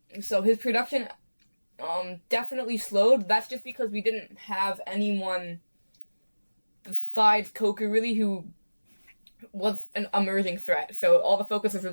So his production definitely slowed. That's just because we didn't have anyone besides Coker really who was an emerging threat. So all the focus was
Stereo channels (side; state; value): both; inverted; correlation -1.00